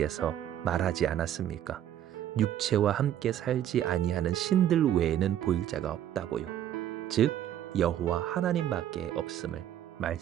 말하지 않았습니까? 육체와 함께 살지 아니하는 신들 외에는 보일 자가 없다고요. 즉 여호와 하나님밖에 없음을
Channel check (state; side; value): quieter; left; 11.0 dB